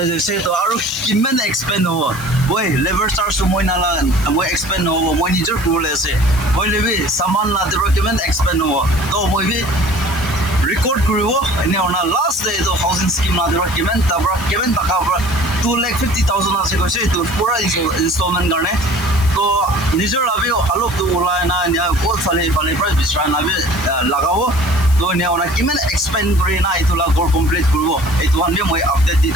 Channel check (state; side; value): noise; left; hiss, 15 dB below the sound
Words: তো আৰু কিমান এক্সপেন্ড হ'ব মই লেভাৰ চাৰ্জ মই না মই এক্সপেন্ড হ'ব মই নিজৰ কৰি আছে মই লেবি সামান না দেবৰা কিমান এক্সপেন্ড হ'ব তো মই भी record koribo ene ona last day to housing scheme na dera kimen tabra kimen taka bra 2,50,000 ase koise to pura installment garne to nijor labi alop to ulai na nya kol fale price bisra na be lagabo to ne ona kimen expand kori na itula gor complete koribo etu han be moi update di